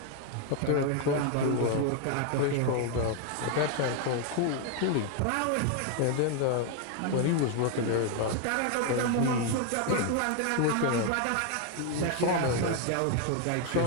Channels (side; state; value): both; different; correlation 0.01